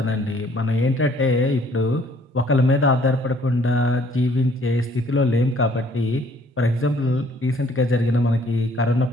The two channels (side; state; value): both; normal; correlation 0.60